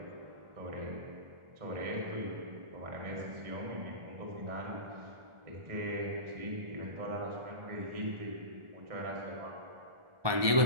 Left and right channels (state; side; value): late; left; 1.2 ms